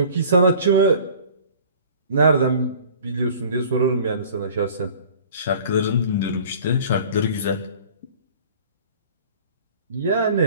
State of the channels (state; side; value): inverted; both; correlation -0.46